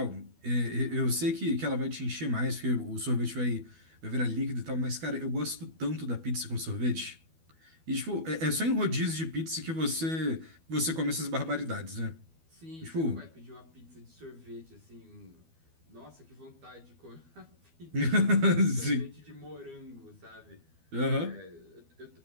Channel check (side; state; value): left; late; 12 ms